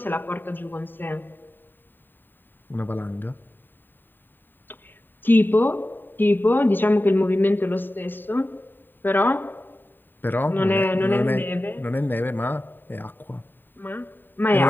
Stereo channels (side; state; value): right; late; 0.093 ms